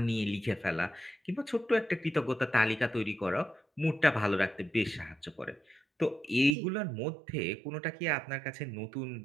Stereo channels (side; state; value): left; drops out; at 6.6 s